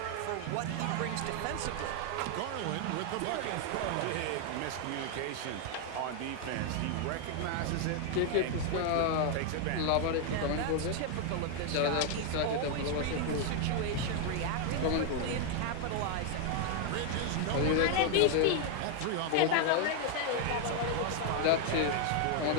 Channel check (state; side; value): different; both; correlation 0.00